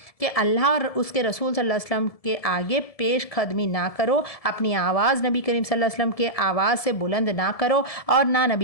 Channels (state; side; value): late; right; 1.7 ms